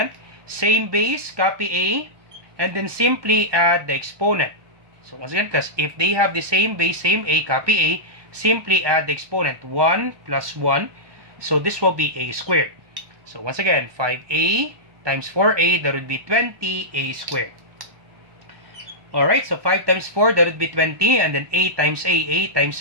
Same base, copy a. And then simply add the exponent. So once again class, if they have the same base, same a, copy a. Simply add the exponent. 1 plus 1. So this will be a squared. So once again, 5a times 4a, that would be 20a squared. Alright, so 5 times 4, that would be 20. And then a times a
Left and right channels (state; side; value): late; left; 1.2 ms